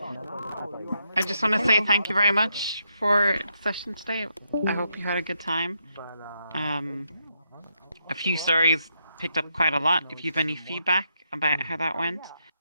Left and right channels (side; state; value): both; inverted; correlation -0.80